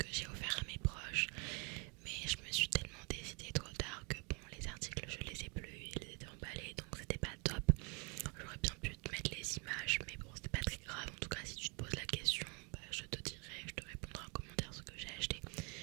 j'ai offert à mes proches, mais je me suis tellement décidée trop tard que bon, les articles je les ai plus, ils étaient emballés donc c'était pas top. J'aurais bien pu te mettre les images, mais bon, c'était pas très grave. En tout cas, si tu te poses la question, bah, je te dirai, je te répondrai en commentaire ce que j'ai acheté.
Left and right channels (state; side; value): quieter; left; 31.6 dB